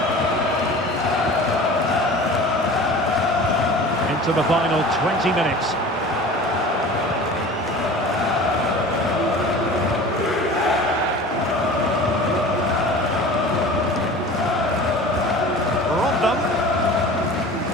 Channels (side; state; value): both; normal; correlation 0.39